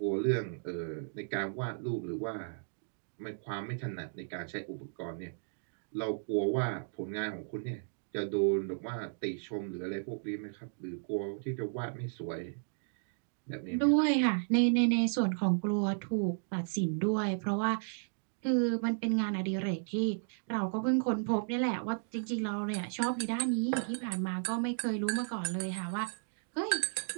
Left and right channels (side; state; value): left; silent; digital silence